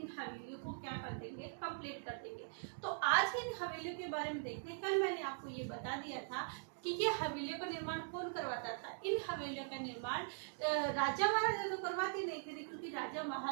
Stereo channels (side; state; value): left; silent; digital silence